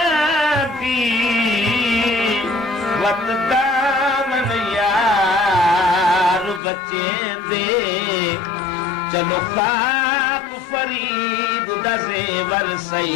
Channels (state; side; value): drops out; right; at 6.6 s